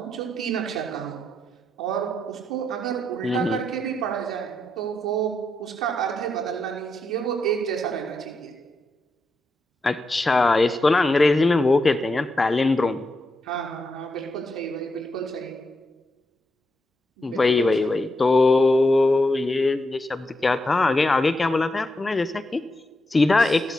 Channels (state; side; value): normal; both; correlation 0.84